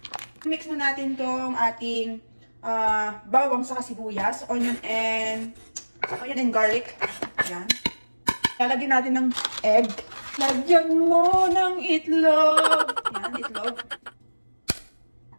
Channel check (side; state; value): both; inverted; correlation -1.00